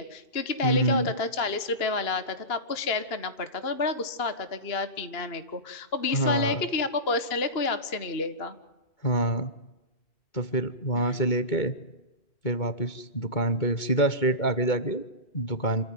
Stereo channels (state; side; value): late; right; 2.9 ms